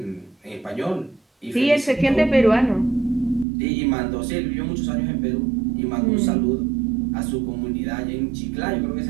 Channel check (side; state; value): left; drops out; at 3.5 s